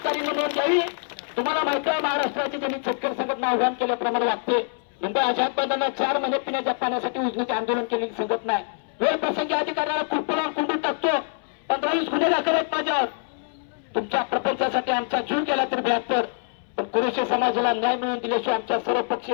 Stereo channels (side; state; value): right; silent; 62 dB below the other